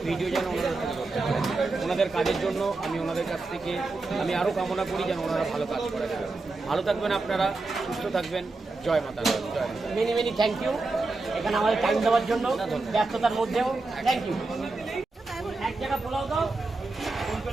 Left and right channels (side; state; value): left; quieter; 3.5 dB